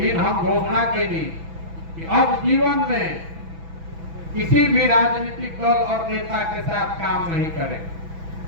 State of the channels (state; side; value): late; left; 6.1 ms